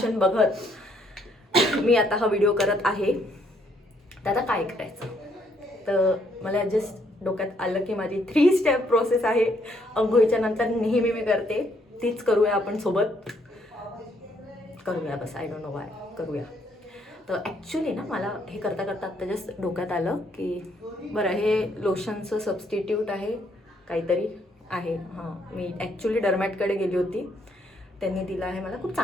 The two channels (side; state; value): both; normal; correlation 0.70